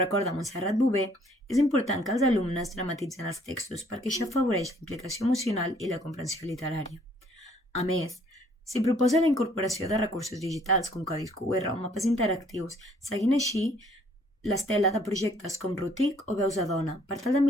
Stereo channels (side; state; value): both; normal; correlation 0.62